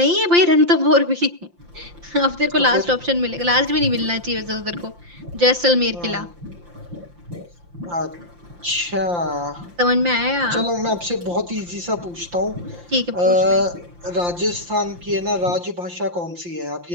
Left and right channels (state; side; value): late; left; 5.8 ms